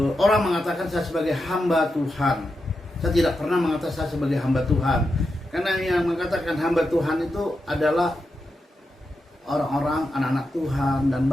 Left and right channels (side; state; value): both; normal; correlation 0.87